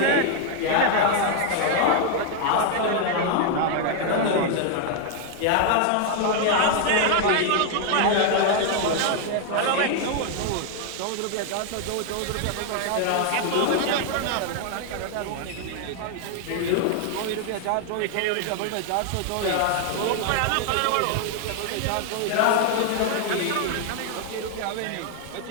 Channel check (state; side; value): different; both; correlation 0.00